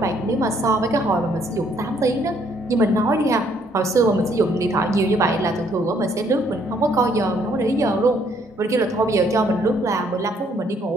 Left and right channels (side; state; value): both; normal; correlation 0.67